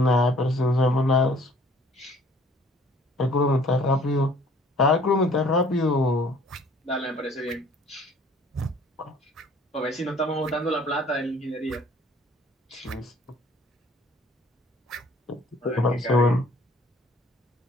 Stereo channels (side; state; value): both; normal; correlation 0.55